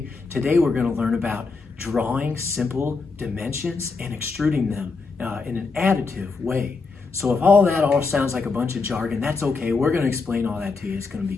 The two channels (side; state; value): right; quieter; 4.3 dB